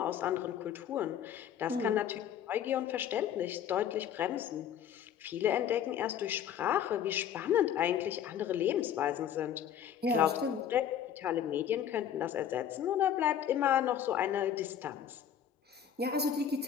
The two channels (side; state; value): right; quieter; 9.3 dB